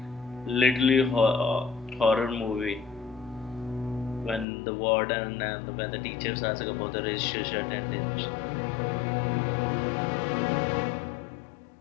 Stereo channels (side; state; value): right; drops out; at 4.5 s